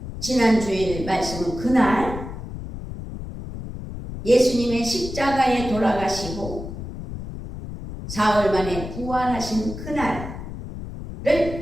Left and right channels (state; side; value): noise; left; rumble, 9 dB below the sound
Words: 지난주일 말씀은 그날 예수님의 십자가에 돌아가시고 4월 만에 부활하신 그날을